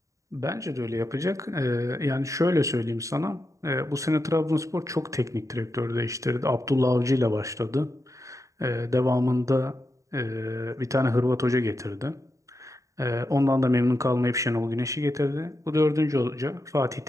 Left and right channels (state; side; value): late; left; 0.16 ms